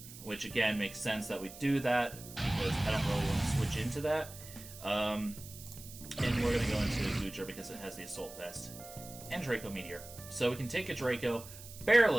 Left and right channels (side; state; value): right; noise; hiss, 15 dB below the sound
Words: which again makes sense that we do that because I don't really want to switch into that. And we're going to go into Gudra because it has the Assault Vest and Draco Meteor. So we can take a Draco,